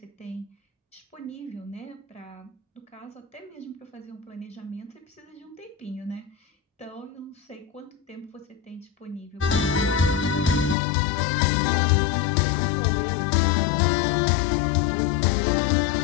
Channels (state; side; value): drops out; right; at 10.8 s